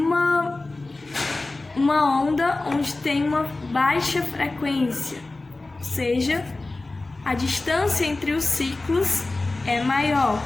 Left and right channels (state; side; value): quieter; right; 3.1 dB